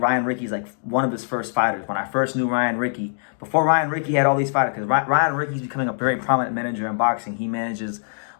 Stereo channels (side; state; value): right; silent; digital silence